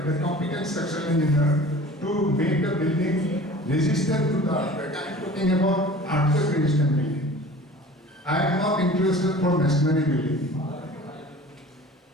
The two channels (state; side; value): normal; both; correlation 0.43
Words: the competent structural engineer to make the building resistant to the earthquake. I am talking about earthquake resistant building. I am not interested for masonry building.